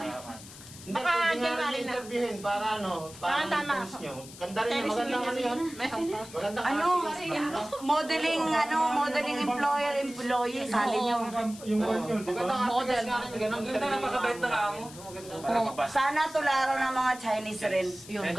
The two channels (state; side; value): noise; left; hiss, 17 dB below the sound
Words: Hindi, Baka pwede nga January rin na. interviewin para para tama. i-post nyo. Ganda rin yun, maganda ano yun. Maganda Modeling employer-employee, sabi niyo. model. Ang ganda na makabait ng amo. Sana tularo ng mga Chinese rin. Yung